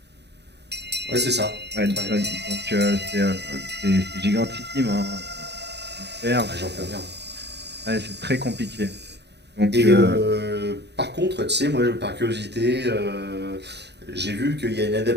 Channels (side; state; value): left; late; 0.49 ms